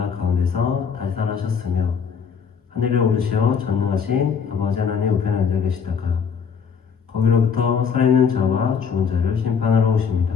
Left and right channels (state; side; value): quieter; right; 6.5 dB